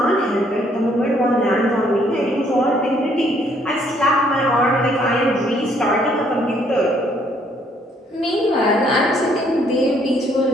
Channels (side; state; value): both; normal; correlation 0.66